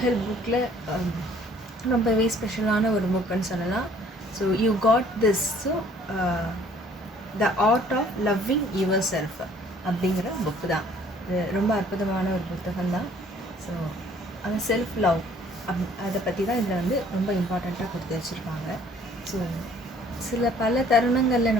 ஹெல்ப் புக்கில் ரொம்பவே ஸ்பெஷலான ஒரு புக்குன்னு சொல்லலாம். So you got this. So the art of loving your self அப்படிங்கிற புக்கு தான். இது ரொம்ப அற்புதமான ஒரு புத்தகம் தான். ஸோ அந்த செல்ஃப் லவ் அதை பற்றி தான் இதில் வந்து ரொம்ப இம்பார்ட்டண்ட்டாக கொடுத்து வச்சுருப்பாங்க. ஸோ பல தருணங்களில்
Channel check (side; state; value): both; normal; correlation 0.57